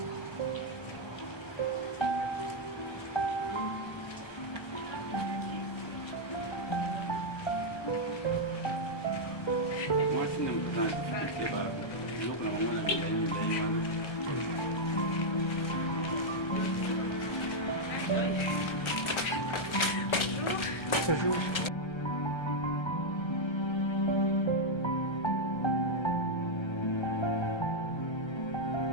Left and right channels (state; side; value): late; right; 1.3 ms